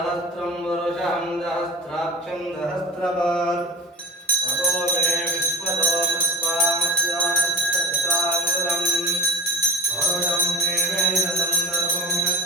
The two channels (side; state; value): both; normal; correlation 0.31